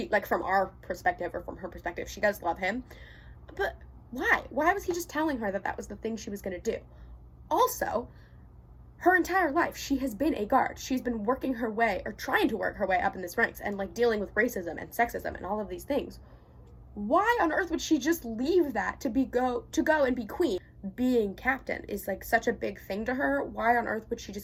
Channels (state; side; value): identical; both; correlation 1.00